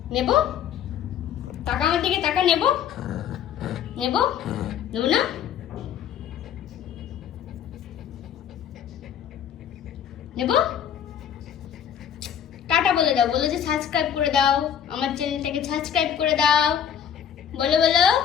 নেবো, টাকা আমার দিকে টাকা নেবো, নেবো, নেবো না, নেবো। টাটা বলে দাও, বলে যে সাবস্ক্রাইব করে দাও, আমার চ্যানেলটাকে সাবস্ক্রাইব করে দাও।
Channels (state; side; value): quieter; right; 8.8 dB